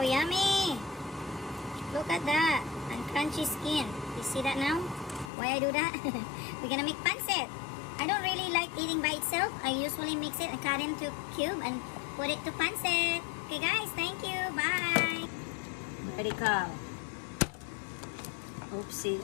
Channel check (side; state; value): right; drops out; at 5.3 s